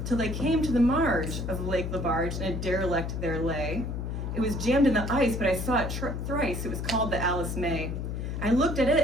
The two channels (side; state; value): left; noise; hum, 4 dB below the sound